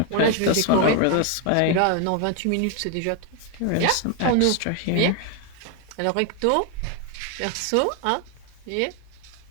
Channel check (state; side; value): different; both; correlation 0.01